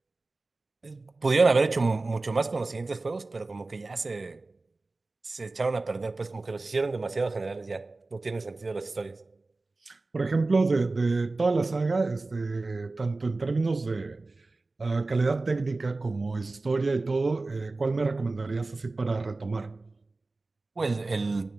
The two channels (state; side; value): quieter; left; 3.4 dB